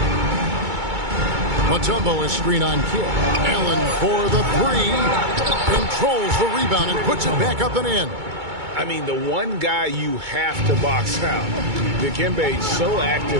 Mutombo is screen on Kidd. Allen for the 3. Controls the rebound and puts it back up and in. I mean, the one guy you have to box out. Dikembe is so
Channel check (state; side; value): late; left; 2.2 ms